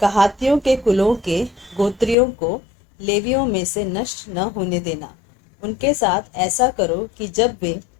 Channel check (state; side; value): drops out; right; at 2.1 s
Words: कहातियों के कुलों के गोत्रियों को लेवियों में से नष्ट न होने देना। उनके साथ ऐसा करो कि जब वे